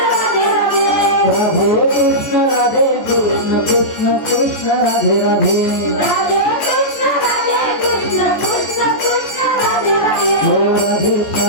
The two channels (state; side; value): late; right; 14 ms